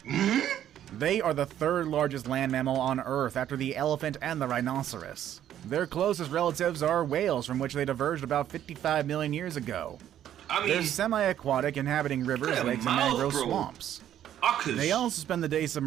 They are the third largest land mammal on Earth after the elephant and the rhinoceros. Their closest relatives are whales, from which they diverged about 55 million years ago. They're semi-aquatic, inhabiting rivers, lakes, and mangrove swamps. They also spend the day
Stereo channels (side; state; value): left; quieter; 11.0 dB